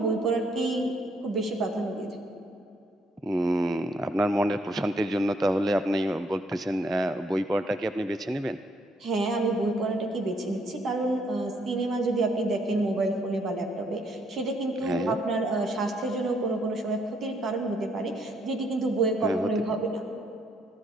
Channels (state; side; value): normal; both; correlation 0.70